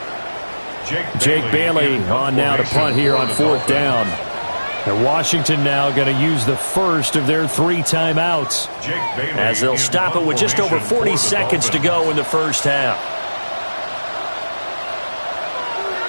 Jake Bailey on now to punt here on 4th down. And Washington now going to use the first of their 3 timeouts. As they'll stop it with just over 40 seconds to go in the first half.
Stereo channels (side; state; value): both; inverted; correlation -1.00